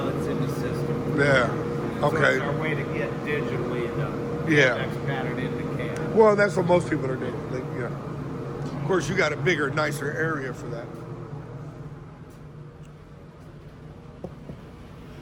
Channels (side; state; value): both; identical; correlation 1.00